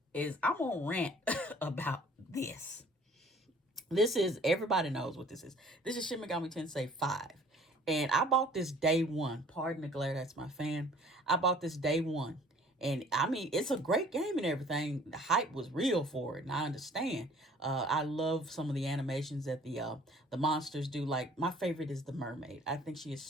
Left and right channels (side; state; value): both; normal; correlation 0.53